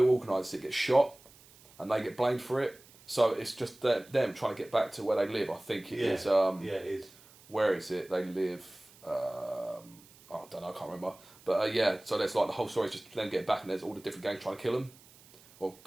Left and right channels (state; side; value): noise; right; hiss, 25 dB below the sound